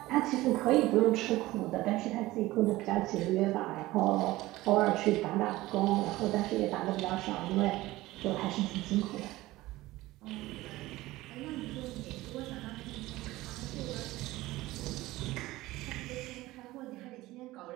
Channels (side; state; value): left; quieter; 18.1 dB